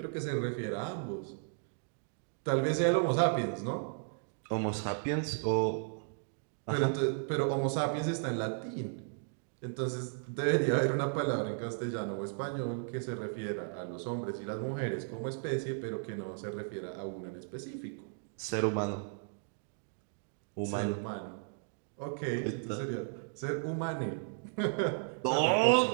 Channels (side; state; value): left; silent; digital silence